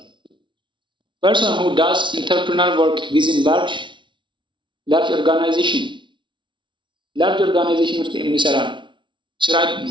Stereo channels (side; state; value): left; late; 0.24 ms